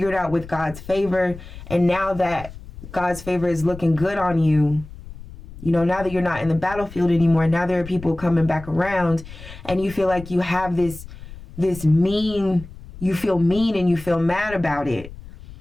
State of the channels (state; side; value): noise; left; rumble, 15 dB below the sound